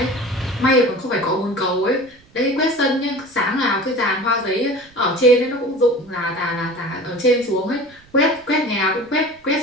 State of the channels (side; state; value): right; noise; rumble, 29 dB below the sound